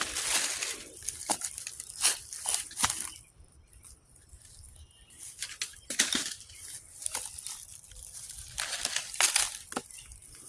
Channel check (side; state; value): both; identical; correlation 1.00